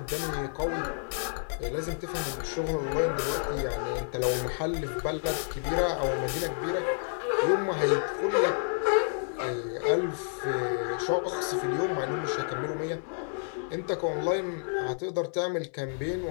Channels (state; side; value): silent; right; 58 dB below the other